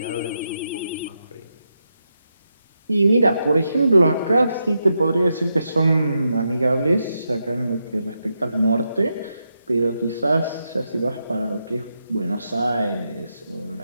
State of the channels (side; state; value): both; inverted; correlation -0.84